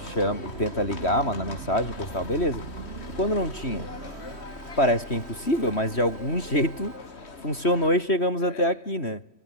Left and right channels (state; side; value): late; right; 3.1 ms